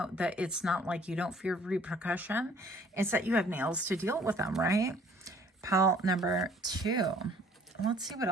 that it's not like you don't fear repercussion. It's that you have nails to deal with them, right? Pile number 2. Let's see what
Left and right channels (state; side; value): normal; both; correlation 0.56